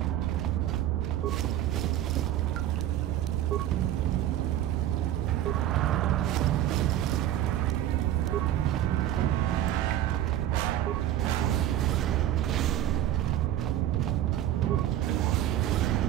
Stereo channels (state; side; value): quieter; left; 12.6 dB